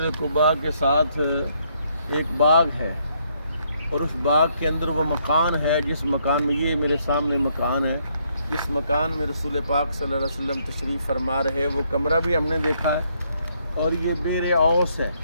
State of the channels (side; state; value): both; inverted; correlation -0.72